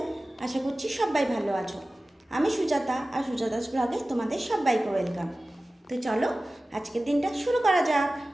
আশা করছি সবাই ভালো আছো। আমি সুজাতা, আর সুজাতাস ব্লগে তোমাদের সবাইকে ওয়েলকাম। তো চলো আজকের দিনটা শুরু করা যাক।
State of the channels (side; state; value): both; normal; correlation 0.96